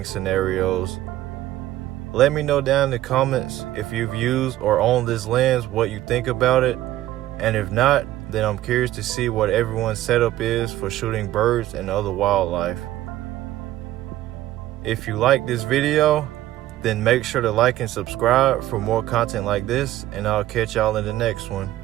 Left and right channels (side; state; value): left; quieter; 14.7 dB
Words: scenarios. Let me know down in the comments if you've used or owned this lens, what you think about it, and if not, then I'm curious to see what everyone's setup is for shooting birds and other wildlife. If you like this video, then make sure to like and subscribe for more content like this, and I'll catch y'all in the next one.